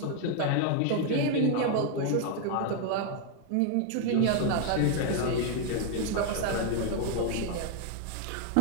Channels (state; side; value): different; both; correlation 0.00